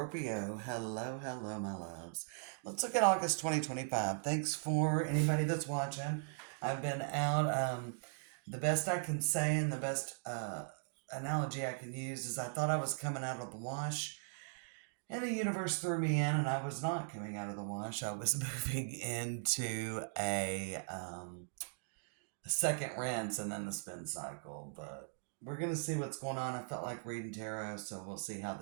Hello, hello, my loves. Let's look at August 2025. Thanks for anybody that's watching. I've been out. The best I can say and the best analogy I can use is I thought I was coming out of the wash, and the universe threw me in, and I was not coming out of the wash. I was moving into a second rinse and then the spin cycle. But we're going to see what's going on. I felt like reading tarot, so we'll see how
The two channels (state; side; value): silent; left; digital silence